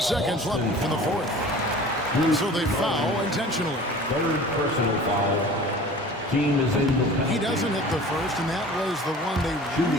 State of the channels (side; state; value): both; normal; correlation 0.43